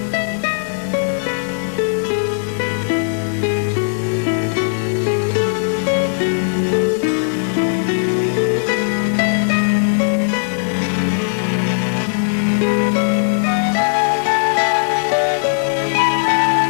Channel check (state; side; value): silent; right; 57 dB below the other